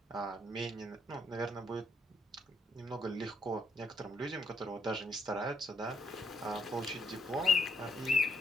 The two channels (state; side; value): normal; both; correlation 0.73